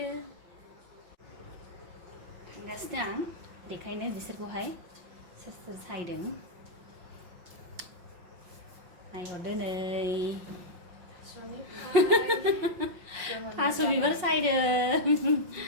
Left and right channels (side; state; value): left; late; 5.5 ms